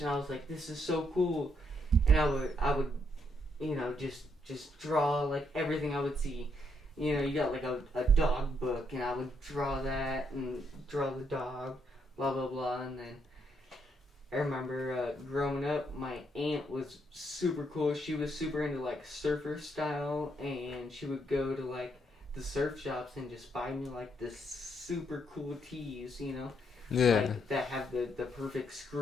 I was like, this is so cool. And I would just draw like everything I would see. You got like a dog book, and I would draw that and draw the dog, blah blah blah. And then I remember growing up, my aunt was super cool. She was super into like surfer style, and she would go to like the surf shops and just buy me like this super cool tees, Yeah. like, that have the perfect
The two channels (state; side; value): normal; both; correlation 0.75